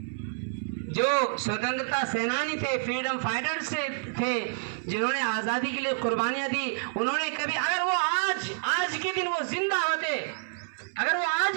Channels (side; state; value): left; silent; 59 dB below the other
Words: جو سوتنترتا سینانی تھے، فریڈم فائٹرز تھے، جنہوں نے آزادی کے لیے قربانیاں دی، انہوں نے کبھی، اگر وہ آج کے دن وہ زندہ ہوتے، اگر وہ